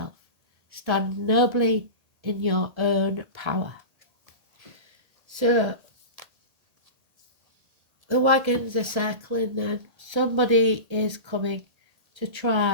Stand nobly in your own power. So, the wagons are circling then. Somebody is coming to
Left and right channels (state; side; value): late; left; 1.8 ms